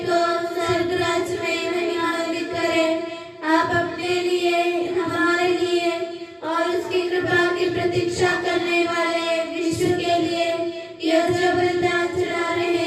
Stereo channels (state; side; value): identical; both; correlation 1.00